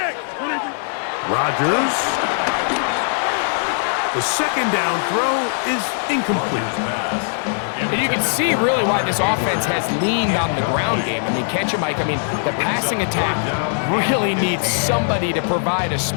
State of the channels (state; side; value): silent; right; digital silence